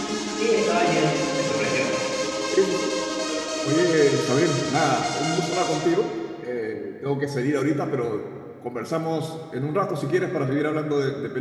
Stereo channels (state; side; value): identical; both; correlation 1.00